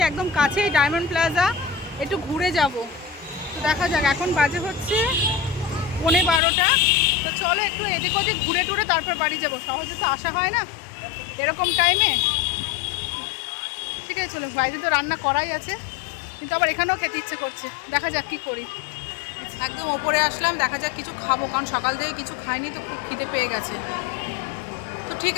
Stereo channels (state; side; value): drops out; right; at 6.4 s